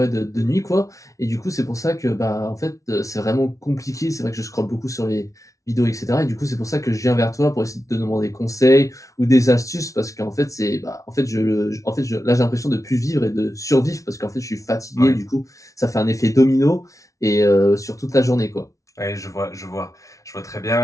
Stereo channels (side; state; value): right; late; 0.16 ms